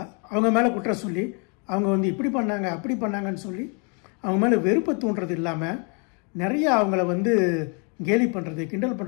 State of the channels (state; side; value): quieter; right; 36.1 dB